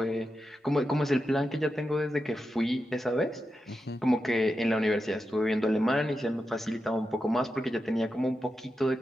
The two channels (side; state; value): both; normal; correlation 0.89